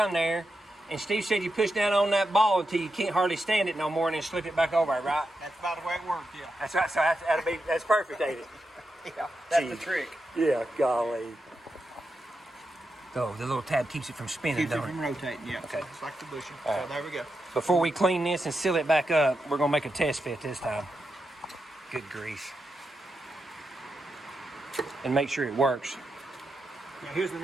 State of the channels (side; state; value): both; normal; correlation 0.87